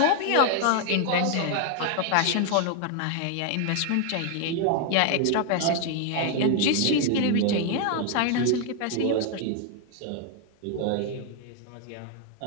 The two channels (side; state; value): both; different; correlation 0.00